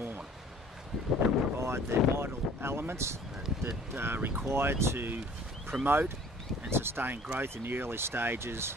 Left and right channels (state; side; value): normal; both; correlation 0.51